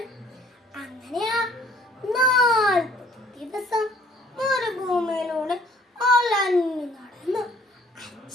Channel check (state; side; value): normal; both; correlation 0.57